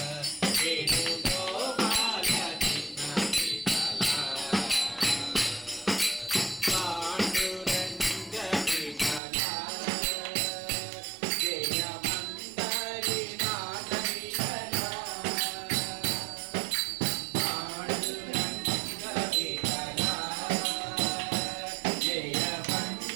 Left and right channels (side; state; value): left; drops out; at 9.2 s